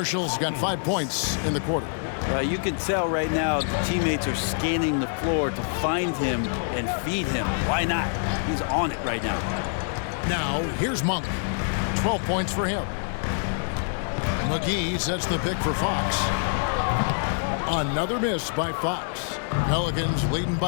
got 5 points in the quarter. You can tell right now the teammates are scanning the floor to find him and feed him. Why not? He's on it right now. Now, here's Monk. 12 points for him. McGee sets the pick for Fox. Another miss by Fox. Pelicans leading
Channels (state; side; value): silent; right; digital silence